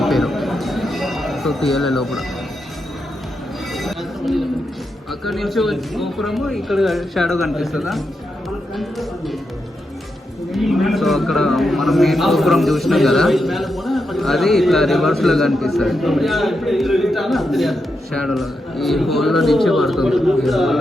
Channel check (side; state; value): both; normal; correlation 0.85